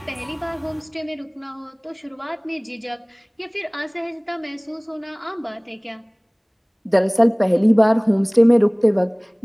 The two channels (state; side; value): identical; both; correlation 1.00